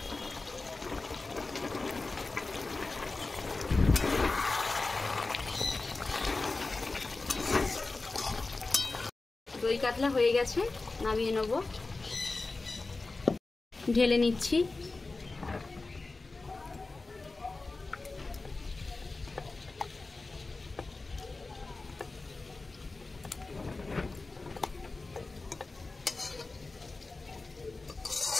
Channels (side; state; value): right; quieter; 3.5 dB